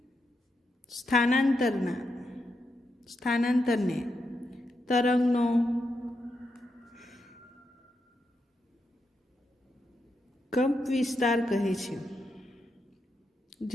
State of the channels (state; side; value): normal; both; correlation 0.84